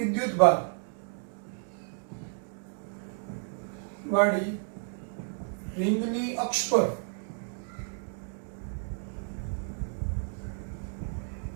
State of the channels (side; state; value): left; silent; 56 dB below the other